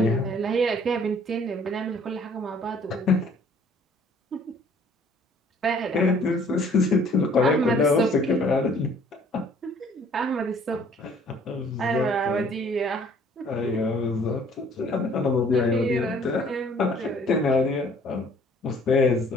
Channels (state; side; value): normal; both; correlation 0.57